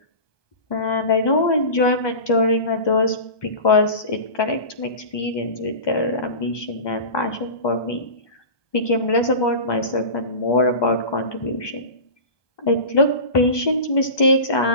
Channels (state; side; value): late; right; 1.2 ms